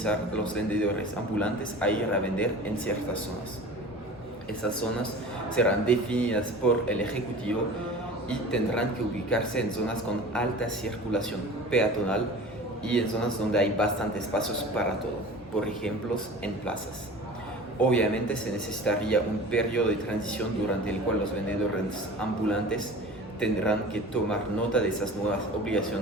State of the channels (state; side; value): normal; both; correlation 0.39